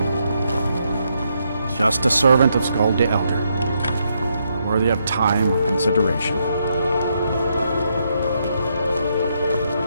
Just a servant of Skald the Elder, worthy of time or consideration.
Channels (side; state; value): both; inverted; correlation -0.78